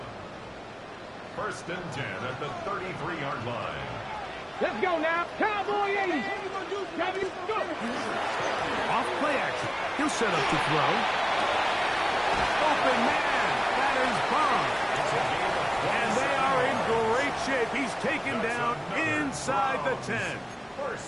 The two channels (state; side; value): identical; both; correlation 1.00